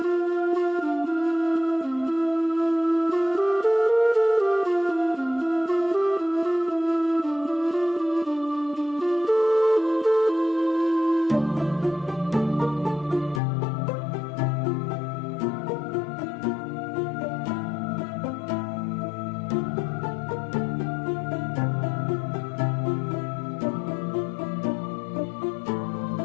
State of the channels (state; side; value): drops out; right; at 13.4 s